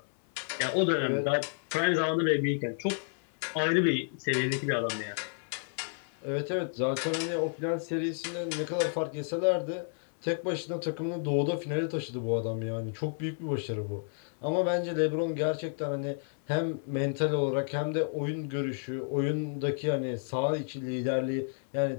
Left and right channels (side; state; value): right; silent; 57 dB below the other